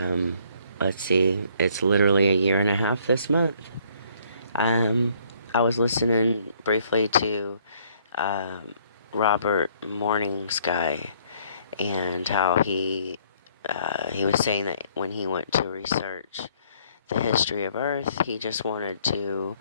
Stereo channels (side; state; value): both; inverted; correlation -0.63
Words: let's see, it's literally a year and a half this month. Um, I was listening briefly to um, Robert Morning Sky and how he was saying that when he went to research the history of Earth, he just wanted to